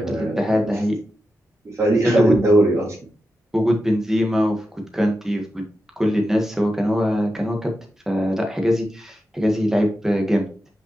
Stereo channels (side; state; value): both; normal; correlation 0.89